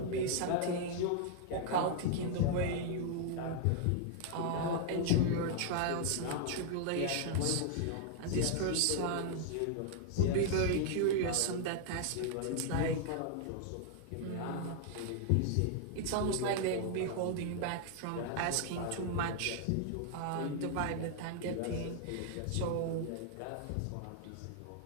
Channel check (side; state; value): both; different; correlation 0.00